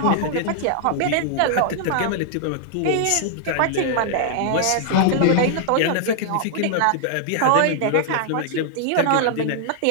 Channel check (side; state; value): both; different; correlation -0.01